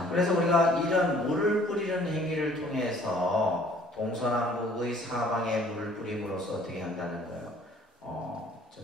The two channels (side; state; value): both; normal; correlation 0.56